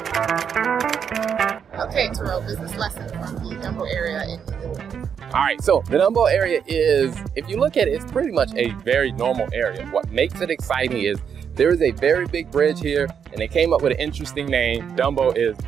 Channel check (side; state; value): left; quieter; 7.4 dB